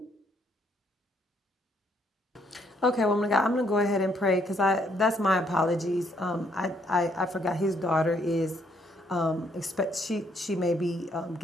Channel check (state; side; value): normal; both; correlation 0.69